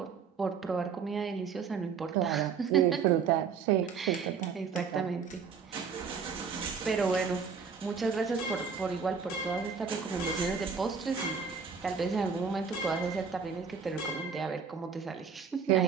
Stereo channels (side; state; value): left; quieter; 6.0 dB